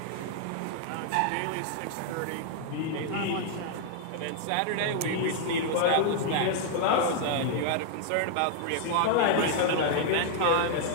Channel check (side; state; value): both; different; correlation 0.00